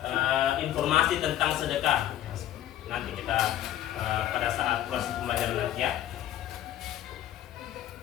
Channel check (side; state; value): right; quieter; 12.2 dB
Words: informasi tentang sedekah. Nanti kita pada saat proses pembelajaran nanti ya.